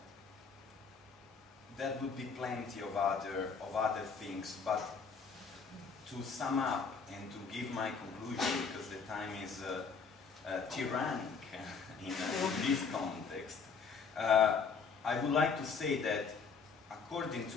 There would be plenty of other things, but to sum up and to give my conclusion, because the time is tyrannic in this context, I would like to say that, according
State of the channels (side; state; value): right; quieter; 5.3 dB